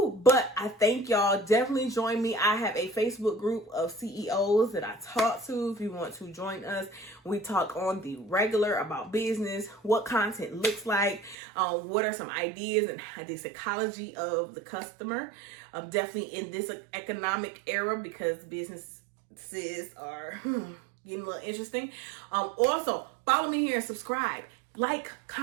I thank y'all. Definitely join me. I have a Facebook group of CEOs that I talk to. If you want to join us, we talk on the regular about business, what content looks like, what are some ideas and the psychology of the customer. Definitely in this economic era, because businesses are getting a little interesting. Also, follow me here and subscribe. Like,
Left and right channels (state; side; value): drops out; left; at 11.4 s